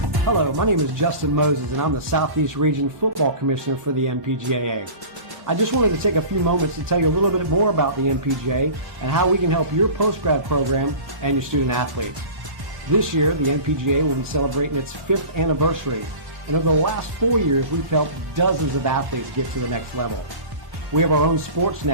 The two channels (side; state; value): left; late; 1.1 ms